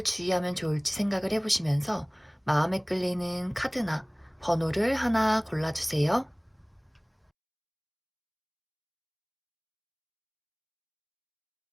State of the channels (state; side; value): identical; both; correlation 1.00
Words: 주의하면 좋을지 생각을 해보시면서 마음에 끌리는 카드나 번호를 하나 골라주세요.